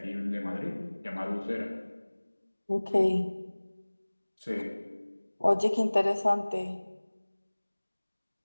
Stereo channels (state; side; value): inverted; both; correlation -1.00